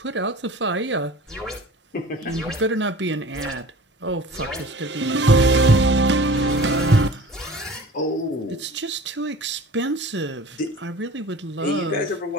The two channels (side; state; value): both; normal; correlation 0.42